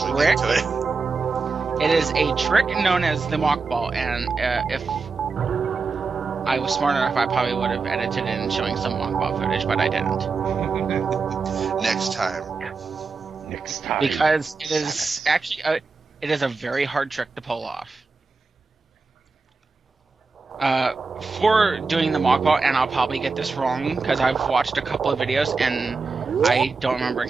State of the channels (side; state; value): left; quieter; 4.4 dB